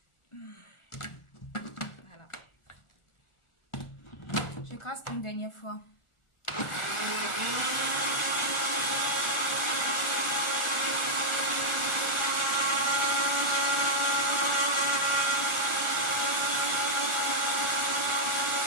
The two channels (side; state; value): right; late; 1.4 ms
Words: Voilà. J'écrase une dernière fois.